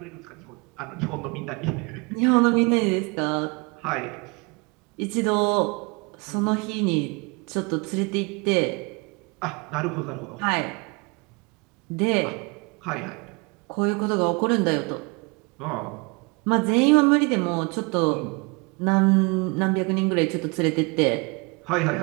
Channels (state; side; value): quieter; left; 29.4 dB